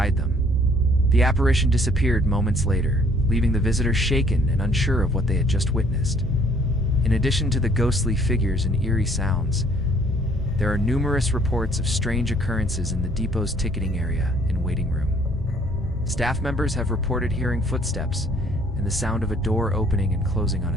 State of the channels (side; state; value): both; normal; correlation 0.60